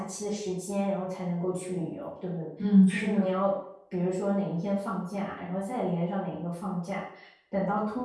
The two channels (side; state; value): both; identical; correlation 1.00